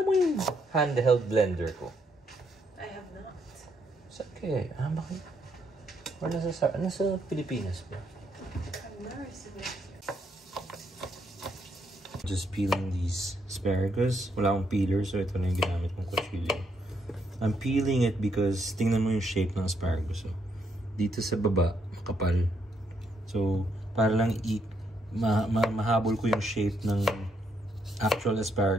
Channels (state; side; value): normal; both; correlation 0.75